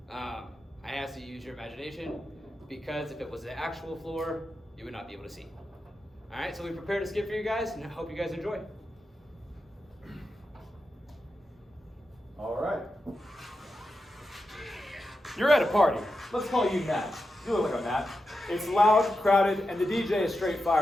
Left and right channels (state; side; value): normal; both; correlation 0.89